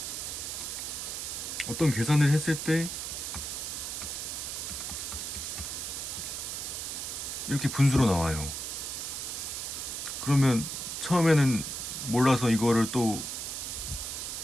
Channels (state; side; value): noise; right; hiss, 5 dB below the sound